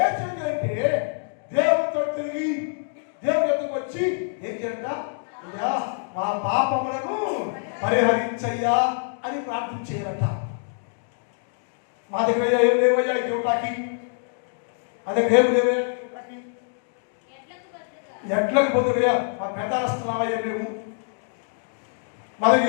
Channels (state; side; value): silent; right; digital silence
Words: అంటే దేవుడితో తిరిగి దేవుడి దగ్గరికి వచ్చి ఏం చేయంట? అయ్యా, మా పాపములను పరిహరించయ్యా అని ప్రార్థన చేయాలట. మా దగ్గర ఏం లేవయ్యా దేవుడికి, అదే ఏమి లేవయ్యా దేవుడికి, ఎట్లకు పోతున్నా మా పెదాస్తున్నావయ్యా మేము, మా